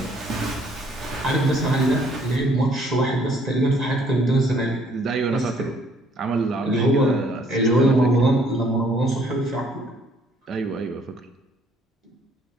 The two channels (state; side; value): normal; both; correlation 0.62